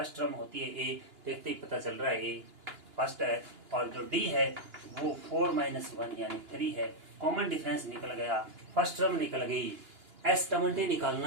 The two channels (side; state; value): left; late; 2.9 ms